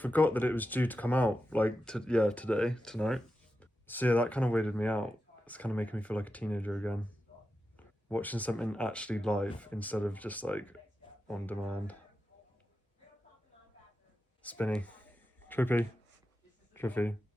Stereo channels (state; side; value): normal; both; correlation 0.90